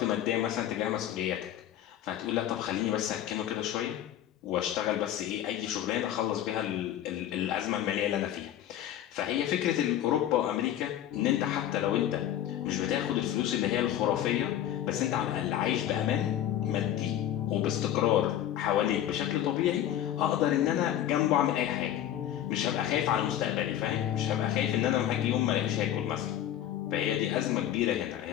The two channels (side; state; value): right; quieter; 11.5 dB